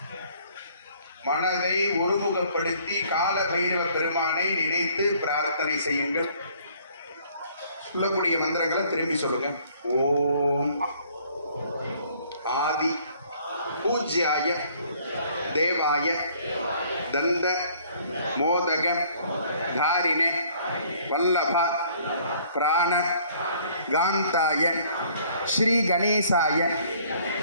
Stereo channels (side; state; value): both; inverted; correlation -0.59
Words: மனதை ஒருமுகப்படுத்தி கால பைரவ பெருமானை நினைத்து பிரார்த்தனை செய்யுங்கள். சொல்லக்கூடிய மந்திரங்களை திரும்பி சொல்லுங்க. ஓம் ஆதி பூஜ்யாய தேவாய தந்த மோதக தாரிணே வல்லப பிராண காந்தாய ஸ்ரீ கணேசாய